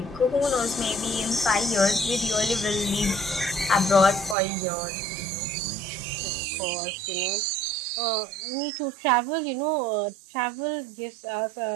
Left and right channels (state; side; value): drops out; left; at 4.4 s